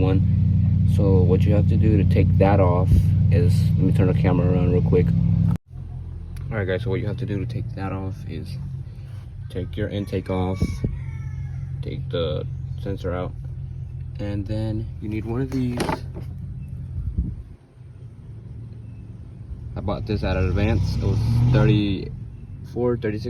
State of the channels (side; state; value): both; identical; correlation 1.00